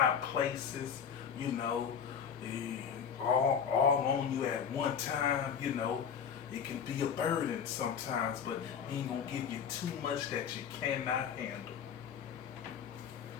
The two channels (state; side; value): quieter; right; 7.5 dB